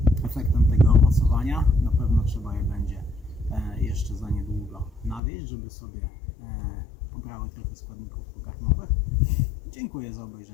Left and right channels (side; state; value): right; drops out; at 5.2 s